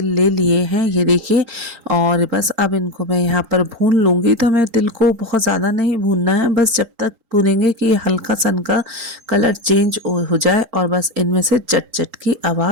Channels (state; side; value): late; left; 3.8 ms